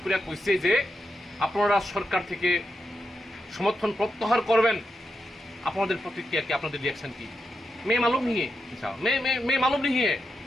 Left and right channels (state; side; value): normal; both; correlation 0.86